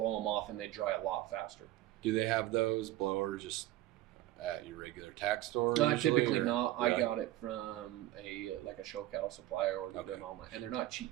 them off, and they dry a lot faster. Do they have those blowers just at your regular tack store? Typically not. I got it from a show cattle supplier or them online, and they're not cheap.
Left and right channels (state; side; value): quieter; left; 15.1 dB